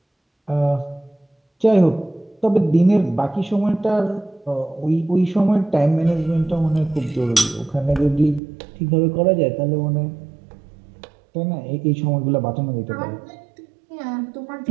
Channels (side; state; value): left; drops out; at 8.4 s